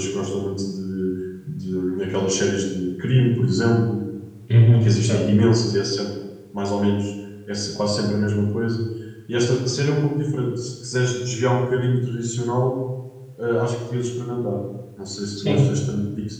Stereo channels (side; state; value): both; identical; correlation 1.00